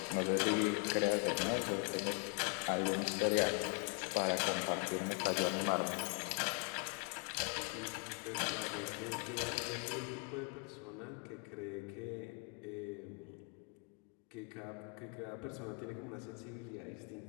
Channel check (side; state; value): right; quieter; 35.4 dB